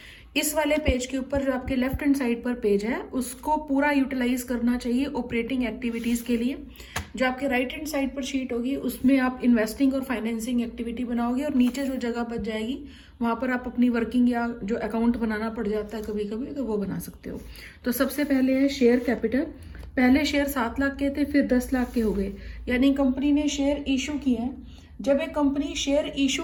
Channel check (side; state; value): both; identical; correlation 1.00